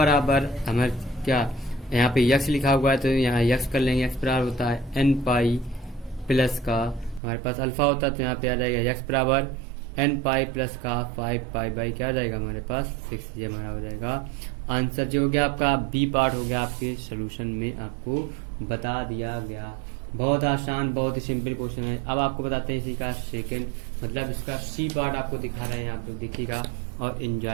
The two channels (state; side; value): drops out; left; at 7.2 s